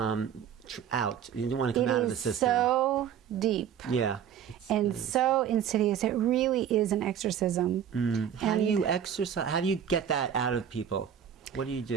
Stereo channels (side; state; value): left; quieter; 8.9 dB